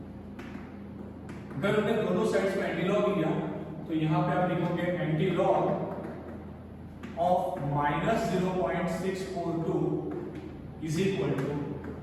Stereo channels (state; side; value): identical; both; correlation 1.00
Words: अगर हमने दोनों साइड्स में एंटी लॉग लिया तो यहां पे आप लिखोगे antilog of minus 0.642 is equal to